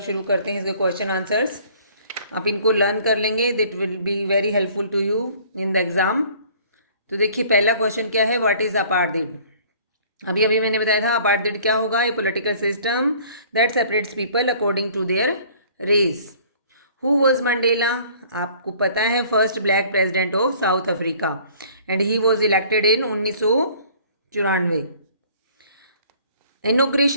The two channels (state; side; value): inverted; both; correlation -0.53